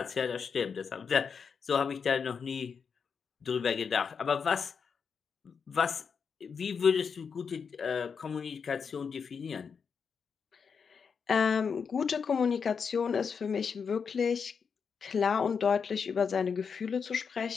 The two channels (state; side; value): quieter; right; 6.1 dB